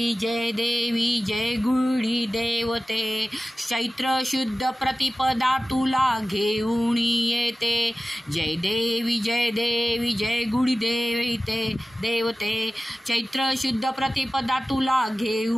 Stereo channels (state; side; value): normal; both; correlation 0.96